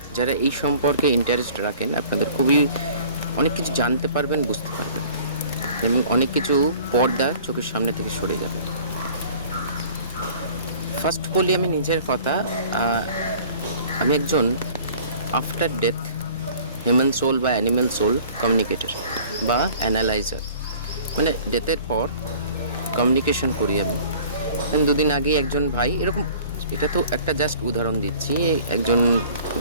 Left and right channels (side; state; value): both; inverted; correlation -0.49